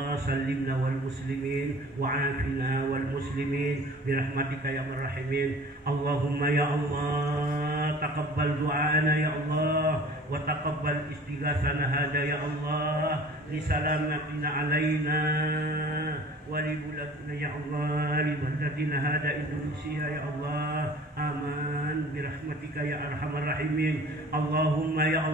sallimna wal muslimin wa afina wal muslimin birahmatika ya marhamin. Allahumma ya Allah taqabbal du'ana ya Allah wa taqabbal istighatsana hada ya Allah li salamatina alaina wa li buladina ya Allah li baladina hada Indonesia ya Allah. Aman birahmatika ya arhamar rahimin. Allahumma ya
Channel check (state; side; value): normal; both; correlation 0.46